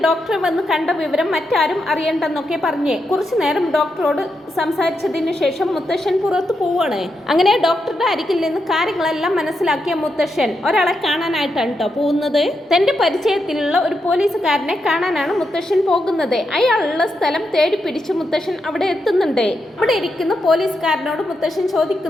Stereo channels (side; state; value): both; normal; correlation 0.84